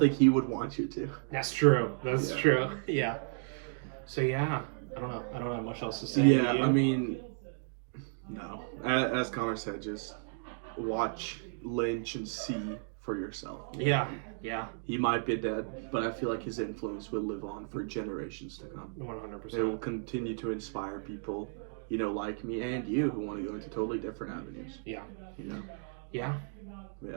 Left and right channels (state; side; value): silent; left; digital silence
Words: he would want you to. That's true. That's true. Yeah. So yeah. I don't know. I don't have much else to say. Yeah, I mean, no. As Connor said, just watch Lynch and see for yourself. Yeah. He might be dead, but I feel like his influence will live on for generations to come. 100%. It will continue to inspire people, like me and you, who want to go into totally different avenues. Yeah. Yeah.